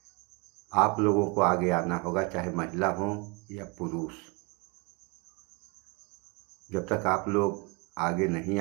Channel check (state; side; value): quieter; left; 29.5 dB